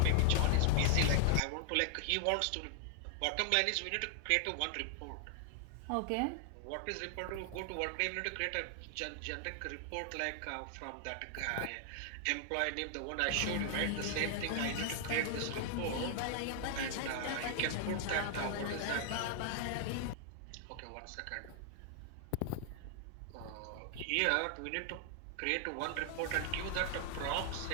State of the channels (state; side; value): different; both; correlation 0.00